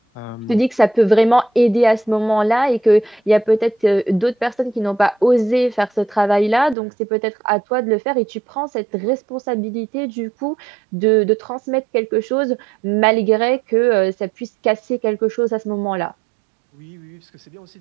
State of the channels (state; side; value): drops out; left; at 6.8 s